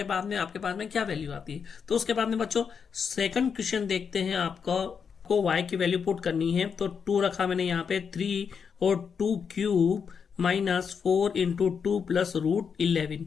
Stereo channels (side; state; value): right; quieter; 6.5 dB